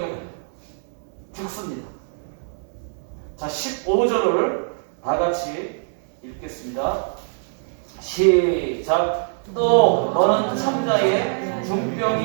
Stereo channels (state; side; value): silent; left; 63 dB below the other